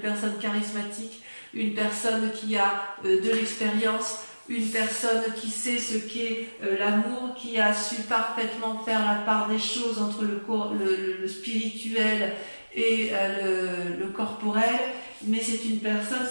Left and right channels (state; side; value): inverted; both; correlation -1.00